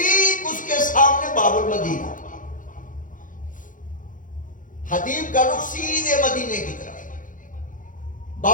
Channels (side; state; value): right; late; 0.38 ms